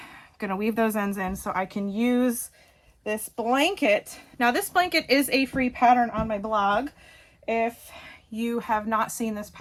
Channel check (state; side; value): identical; both; correlation 1.00